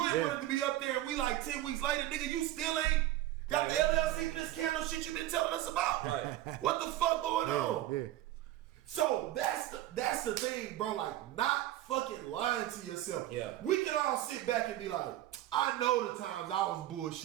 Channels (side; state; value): left; quieter; 14.4 dB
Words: want it to be up there and we like 10 weeks later, nigga, you still ain't got the LLC for this candle shit you been telling us about. What the fuck going on? So that's the thing, bro. Like, not fucking lying to yourself. We can all sit back and be like, I know the times I was